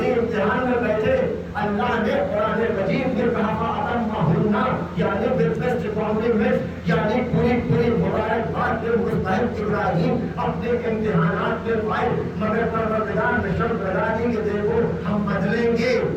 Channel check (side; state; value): both; identical; correlation 1.00